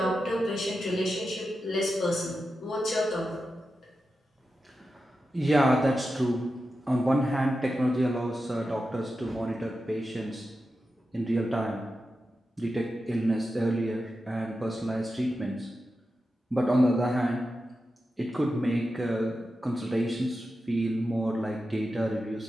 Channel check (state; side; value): normal; both; correlation 0.91